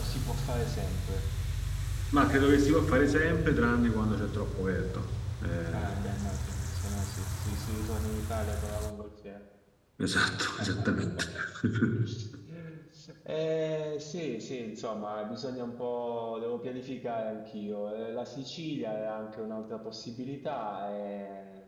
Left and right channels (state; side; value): identical; both; correlation 1.00